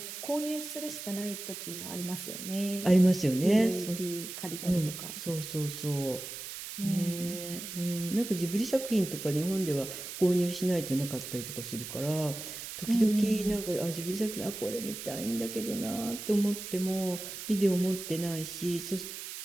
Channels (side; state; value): right; noise; hiss, 9 dB below the sound